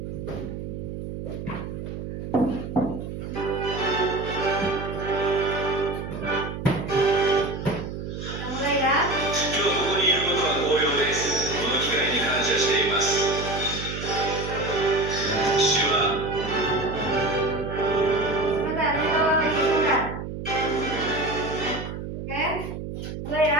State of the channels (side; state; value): right; noise; hum, 7 dB below the sound